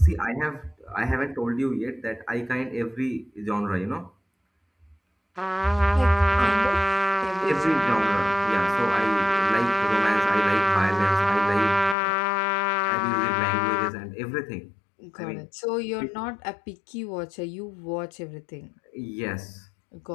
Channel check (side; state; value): right; drops out; at 12.0 s